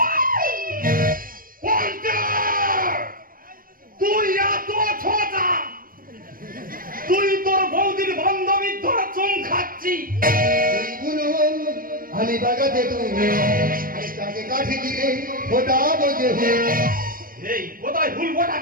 তুই এত ছোটা, তুই তোর বৌদির বান্ধবীর ধরে চুম খাচ্ছি। আমি বাগাতে তুমি তাকে কাঠি দিয়ে ওটা বোঝে। এই কোথায় হুল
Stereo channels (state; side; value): late; left; 0.41 ms